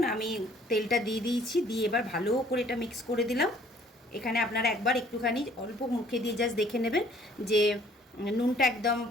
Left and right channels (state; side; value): normal; both; correlation 0.58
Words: আমি তেলটা দিয়ে দিয়েছি, দিয়ে এবার ভালো করে এটা মিক্স করে দিলাম। এখানে আপনারা একবার একটুখানি অল্প মুখে দিয়ে জাস্ট দেখে নেবেন যে নুনটা একদম